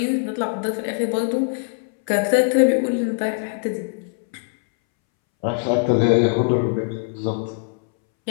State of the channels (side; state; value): right; silent; 63 dB below the other